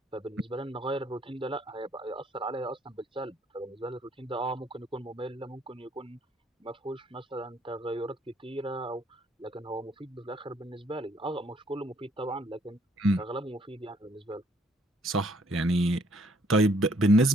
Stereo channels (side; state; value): both; normal; correlation 0.65